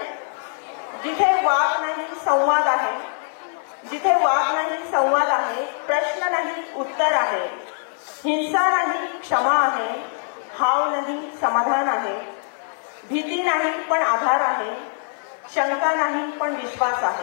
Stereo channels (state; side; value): silent; right; digital silence